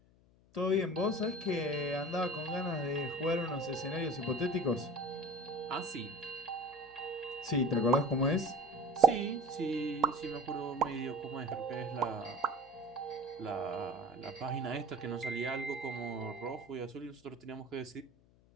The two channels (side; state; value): left; noise; hum, 29 dB below the sound